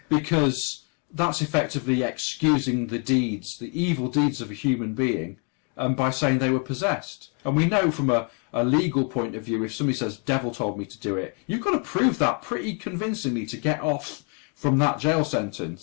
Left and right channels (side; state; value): right; quieter; 38.6 dB